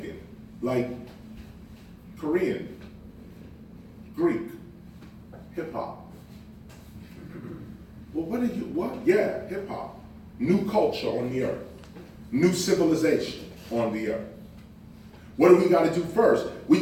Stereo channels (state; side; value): identical; both; correlation 1.00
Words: like Korean, Greek, hip hop. Well, what? Yeah, hip hop. New culture on the earth. New civilization on the earth. What do we got to do first? We